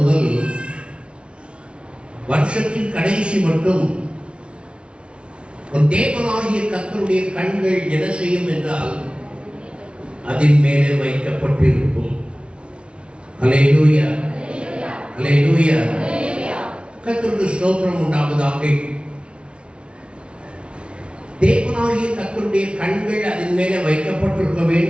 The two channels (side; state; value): left; late; 0.058 ms